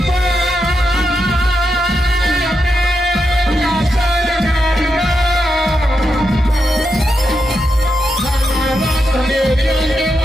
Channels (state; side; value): normal; both; correlation 0.85